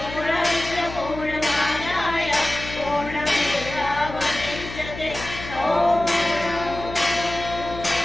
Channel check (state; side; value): noise; left; hum, 11 dB below the sound